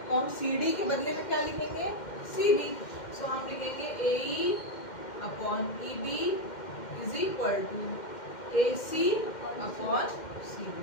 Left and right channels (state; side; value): late; right; 2.1 ms